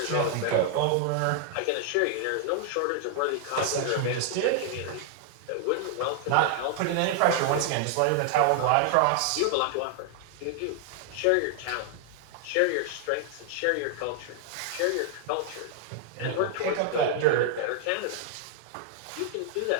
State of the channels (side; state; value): both; different; correlation 0.00